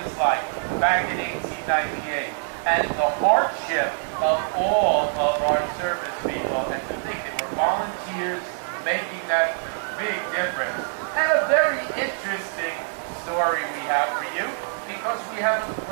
like back in 1898 and the hardship of all of our service people, and to think they were volunteers making that big difference. And a very interesting story we have for you, because we have a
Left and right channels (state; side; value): silent; left; 59 dB below the other